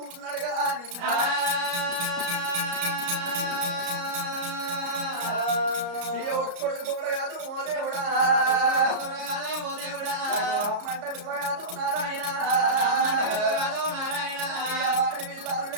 ఉన్నాడు కానీ కొడుకు తోడగాదు ఓ దేవుడా మంట విలువగాదు నారాయణ వాడి విల్లాలు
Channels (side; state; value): left; late; 34 ms